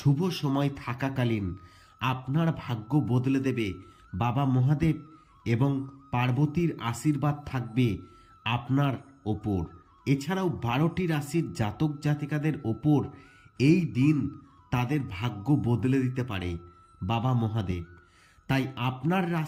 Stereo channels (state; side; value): identical; both; correlation 1.00